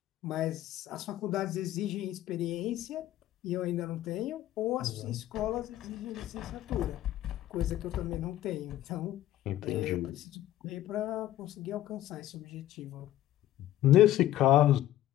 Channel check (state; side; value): quieter; right; 13.4 dB